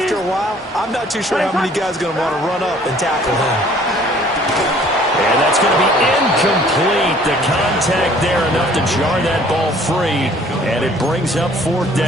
a while, I'm not too sure how many guys are going to want to run up and tackle him. And that's going to be incomplete. The contact there enough to jar that ball free, and it brings up 4th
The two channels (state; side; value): normal; both; correlation 0.56